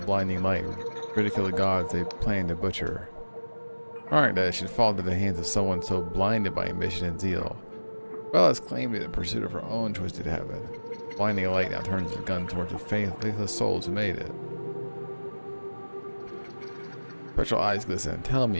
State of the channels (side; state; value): both; inverted; correlation -1.00